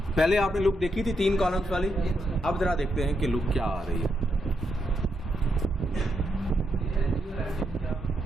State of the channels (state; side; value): normal; both; correlation 0.81